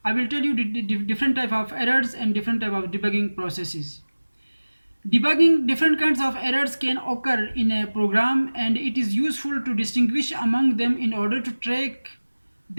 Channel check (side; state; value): both; inverted; correlation -1.00